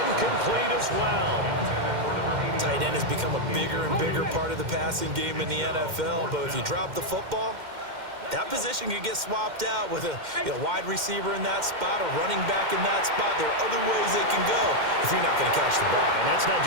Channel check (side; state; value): left; late; 2.1 ms